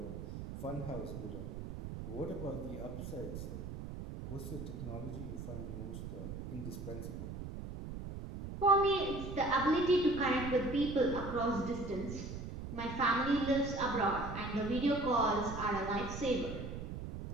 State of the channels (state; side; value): noise; right; rumble, 8 dB below the sound